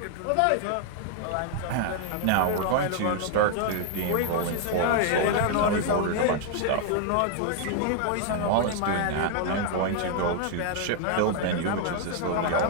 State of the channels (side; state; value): both; different; correlation 0.00